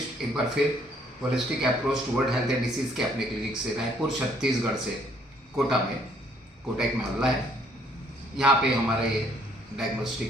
एक बार फिर holistic approach toward health and disease के अपने क्लिनिक से रायपुर छत्तीसगढ़ से कोटा में, कोटा एक मोहल्ला है, यहाँ पे हमारे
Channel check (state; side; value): normal; both; correlation 0.65